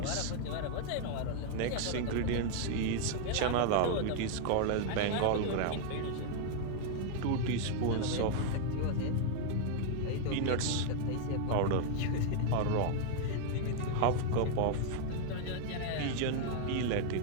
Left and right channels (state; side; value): different; both; correlation 0.00